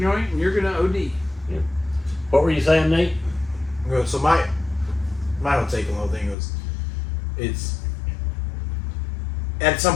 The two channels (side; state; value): right; drops out; at 6.4 s